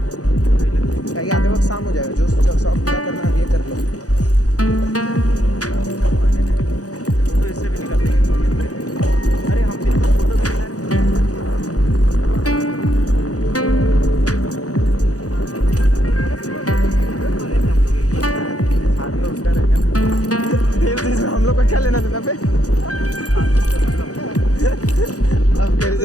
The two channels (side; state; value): right; late; 0.67 ms